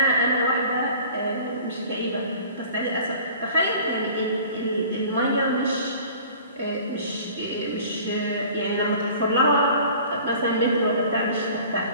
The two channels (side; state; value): both; inverted; correlation -0.46